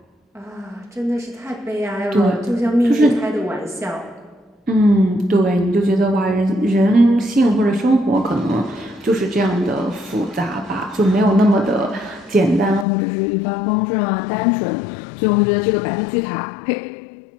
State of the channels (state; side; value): drops out; right; at 12.9 s